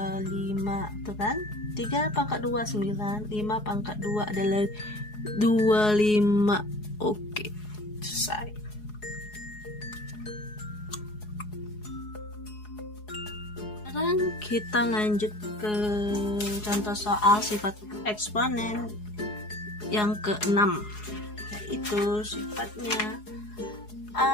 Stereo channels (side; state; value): right; late; 4.8 ms